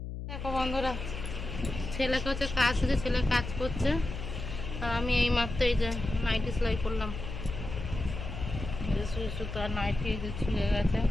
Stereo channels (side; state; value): left; noise; hum, 7 dB below the sound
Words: দেখো বন্ধুরা, ছেলেকে হচ্ছে কাজ হচ্ছে, ছেলে কাজ করছে, আর আমি এই মাত্র এই যে নাইটি সেলাই করলাম। সুই সুতো আর নাইটি এই যে ছিঁড়ে গেছে,